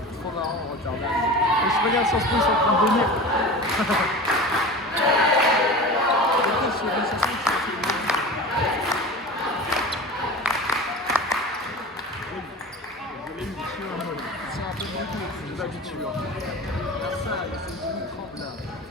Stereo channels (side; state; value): both; normal; correlation 0.34